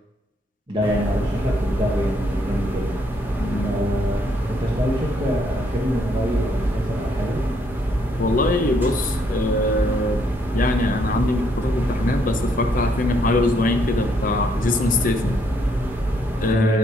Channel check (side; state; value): both; normal; correlation 0.71